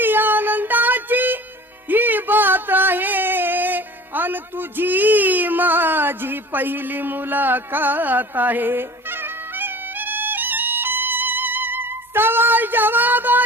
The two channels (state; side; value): normal; both; correlation 0.42